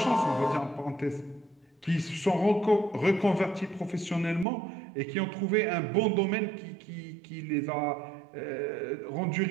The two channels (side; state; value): left; drops out; at 4.5 s